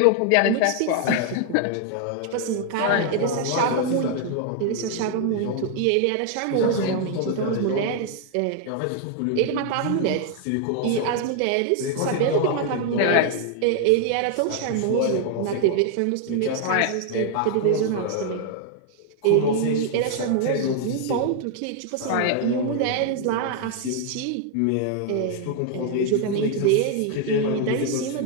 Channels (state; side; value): different; both; correlation 0.00